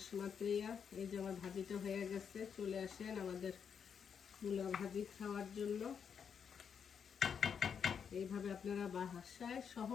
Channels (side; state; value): right; quieter; 7.1 dB